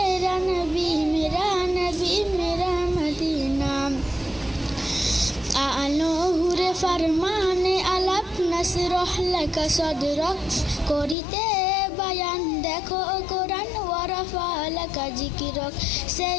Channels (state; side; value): drops out; right; at 11.2 s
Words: নবী মেরা মদিনা আলোহুরে ফরমানে আলাপ নসরহ লাকা সদরক করিতে বায়ান দেখো কোরআন ওয়ারাফা লাকা জিকিরক